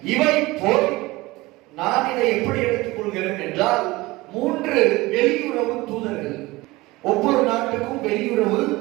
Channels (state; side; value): quieter; left; 20.7 dB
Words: இவை போய் நான் இதை எப்படி எடுத்துக் கொள்கிறேன் என்றால், 3 வெளியுறவு தூதர்கள், ஒவ்வொரு நாட்டுக்கும் வெளியுறவு